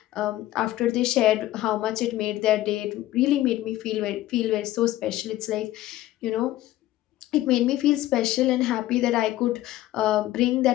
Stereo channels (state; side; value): quieter; right; 15.1 dB